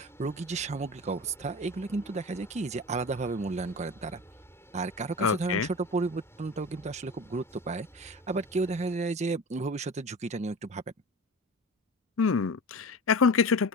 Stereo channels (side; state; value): both; normal; correlation 0.33